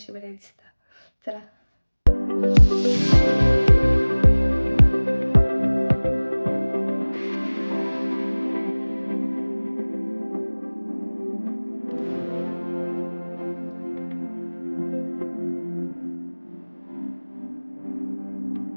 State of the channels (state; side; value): inverted; both; correlation -1.00